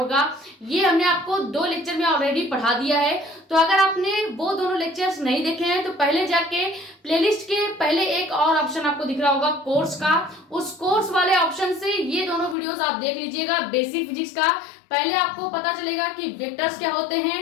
ये हमने आपको 2 लेक्चर में ऑलरेडी पढ़ा दिया है। तो अगर आपने वो दोनों लेक्चर्स नहीं देखे हैं तो पहले जाके प्लेलिस्ट के पहले एक और ऑप्शन आपको दिख रहा होगा कोर्स का, उस कोर्स वाले ऑप्शन से ये दोनों वीडियोस आप देख लीजिएगा बेसिक फिजिक्स का। पहले आपको पता चलेगा कि वेक्टर्स क्या होते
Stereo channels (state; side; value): drops out; right; at 12.6 s